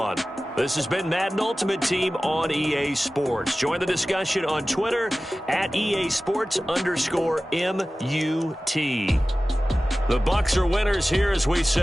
This has been Madden Ultimate Team on EA Sports. Join the discussion on Twitter at EA Sports_MUT. The Bucs are winners here as we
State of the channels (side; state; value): both; normal; correlation 0.96